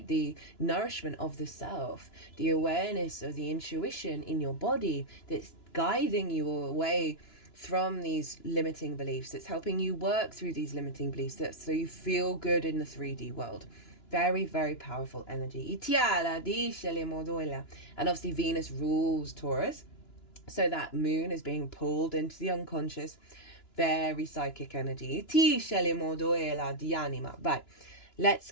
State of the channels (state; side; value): late; right; 2.9 ms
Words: The nourishment of the self, the awareness of the intuition in your body that's guiding you away from these limiting beliefs. It's helping you work through these limiting beliefs so you feel good in the 3D world. Very, very powerful energy. And obviously Venus rules Taurus. So that moon is being pulled into the unconscious. Very psychic energy. Right, let's